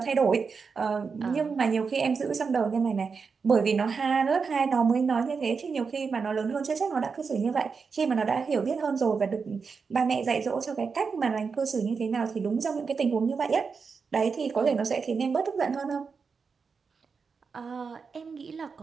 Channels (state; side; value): quieter; left; 5.3 dB